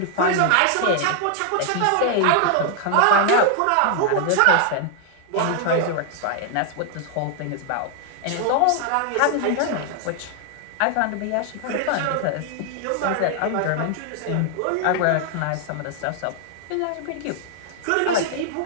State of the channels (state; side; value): different; both; correlation 0.00